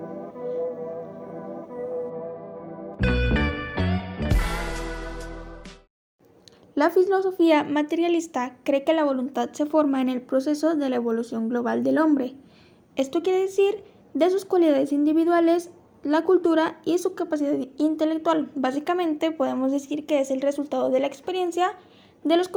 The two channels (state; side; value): identical; both; correlation 1.00